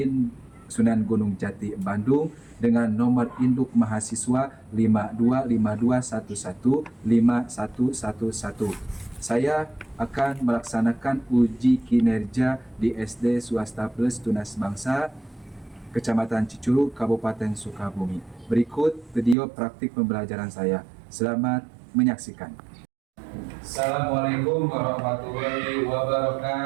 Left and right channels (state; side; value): drops out; left; at 19.4 s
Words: Sunan Gunung Jati, Bandung dengan nomor induk mahasiswa 5252115111. Saya akan melaksanakan uji kinerja di SD Swasta Plus Tunas Bangsa Kecamatan Cicurug, Kabupaten Sukabumi. Berikut video praktik pembelajaran saya. Selamat menyaksikan. Assalamualaikum warahmatullahi